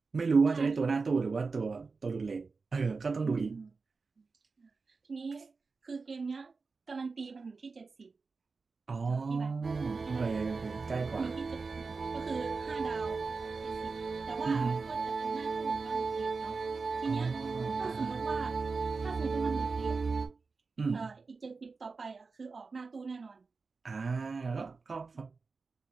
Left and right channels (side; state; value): left; quieter; 4.4 dB